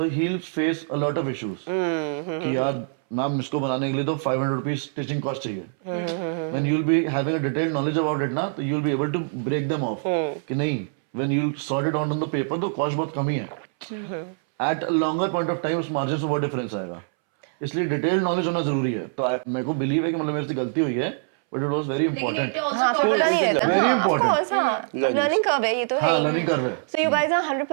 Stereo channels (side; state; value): left; silent; 62 dB below the other